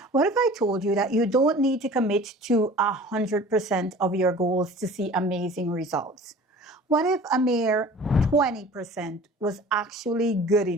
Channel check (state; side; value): normal; both; correlation 0.44